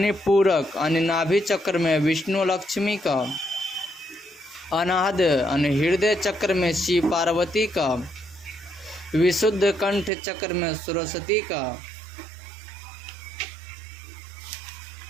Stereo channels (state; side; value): drops out; left; at 10.1 s